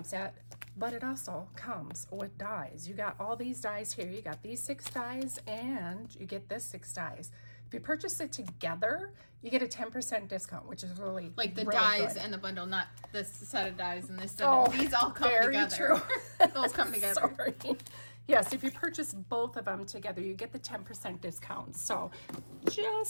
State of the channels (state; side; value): inverted; both; correlation -1.00